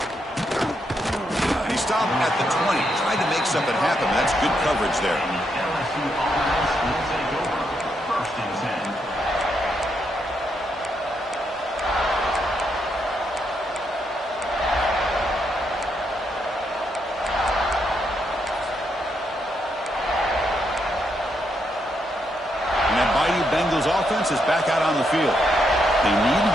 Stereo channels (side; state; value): both; normal; correlation 0.79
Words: And he stopped at the 20. Tried to make something happen. That's good coverage there. And that Bayou Bengals offense is back out on the field. They need